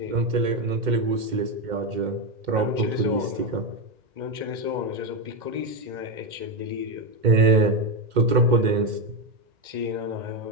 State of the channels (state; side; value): late; left; 2.1 ms